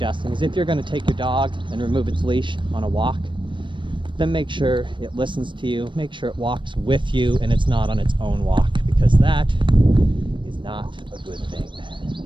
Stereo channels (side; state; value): left; late; 0.23 ms